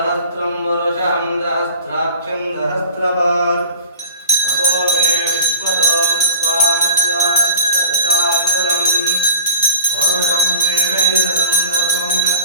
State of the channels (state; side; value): inverted; both; correlation -0.41